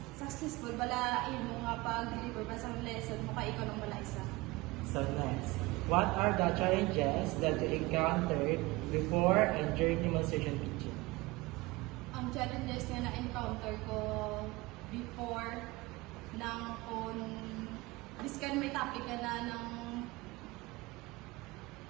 successful bala mo nga pag-deliver ba sa lesson mo kay ikaw lang bala isa. So, next, what are the challenges that you encountered before and during demonstration teaching? Ang challenges na na-encounter ko before nang kung biskan may topic ka na ng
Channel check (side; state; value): left; quieter; 22.2 dB